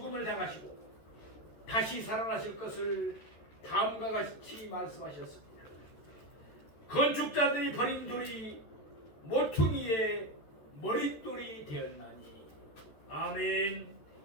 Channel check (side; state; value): right; late; 14 ms